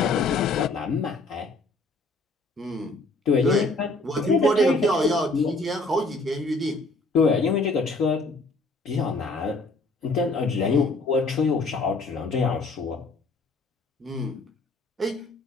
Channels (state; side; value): quieter; right; 3.1 dB